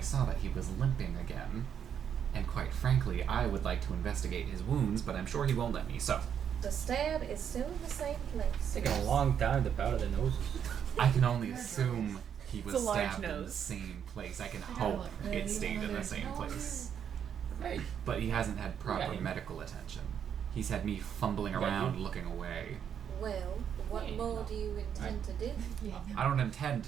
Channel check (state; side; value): quieter; left; 8.4 dB